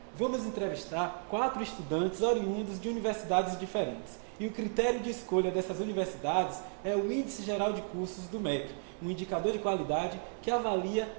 Vamos entrevistar 4 estudantes oriundos de universidades diferentes. E o critério de escolha dessas universidades é o Índice Geral de Cursos do MEC, um indicador de qualidade que avalia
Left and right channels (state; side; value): silent; left; 55 dB below the other